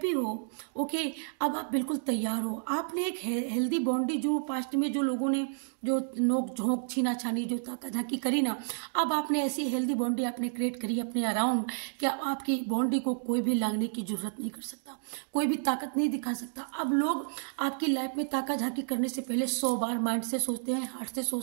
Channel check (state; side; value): silent; left; digital silence